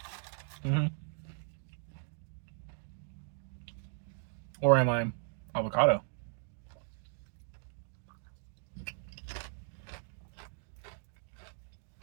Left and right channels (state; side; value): silent; left; digital silence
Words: Or am I avocado?